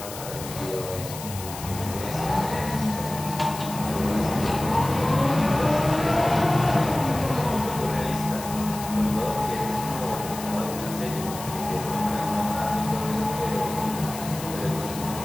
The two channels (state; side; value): noise; left; hiss, 11 dB below the sound